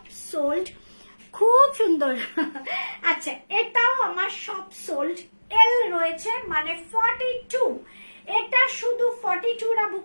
সোল্ড, খুব সুন্দর। আচ্ছা, এটাও আমার সব সোল্ড, এল রয়েছে মানে 42। এটা শুধু 42রা বুক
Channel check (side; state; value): both; inverted; correlation -1.00